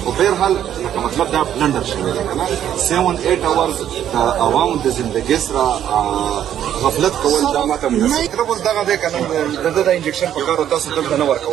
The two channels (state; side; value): quieter; left; 10.5 dB